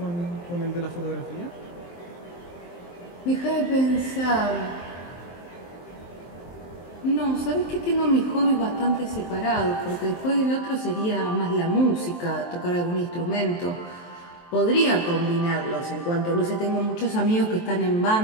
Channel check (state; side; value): late; right; 23 ms